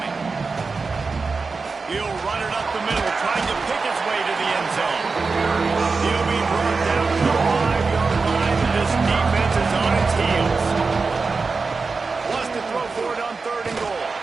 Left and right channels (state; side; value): quieter; left; 4.4 dB